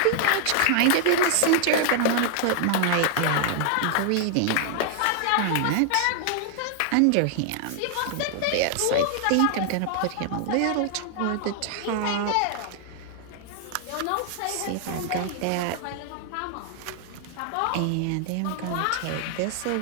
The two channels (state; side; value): different; both; correlation 0.00